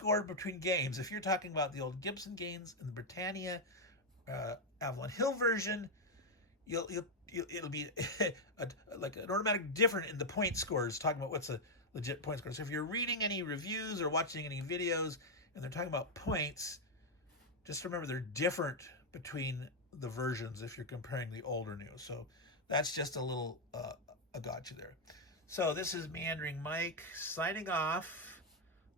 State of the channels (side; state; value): both; normal; correlation 0.01